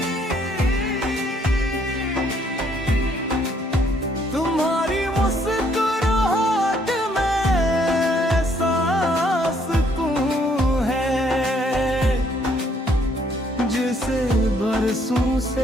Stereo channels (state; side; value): normal; both; correlation 0.67